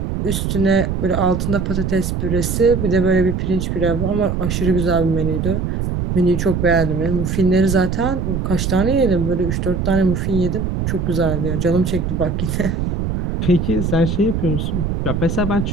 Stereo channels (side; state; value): right; noise; rumble, 1 dB below the sound